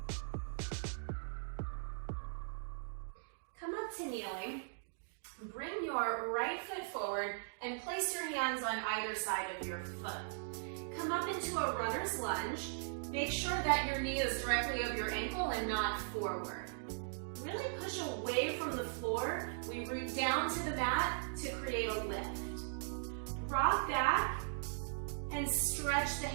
Come up to kneeling. Bring your right foot forward and place your hands on either side of your foot. Come up into a runner's lunge. Make sure that your knee is directly over your ankle and not forward. Really push away from the floor. We root down to the mat to create a lift. Rock back and stretch the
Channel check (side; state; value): left; silent; digital silence